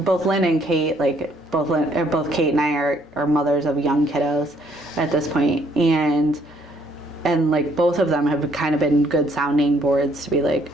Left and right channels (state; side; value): normal; both; correlation 0.66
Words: both Lynn and Kate, like both Kate and I are mothers of young kiddos at this point, and like both of them have kind of been good sounding boards to be like,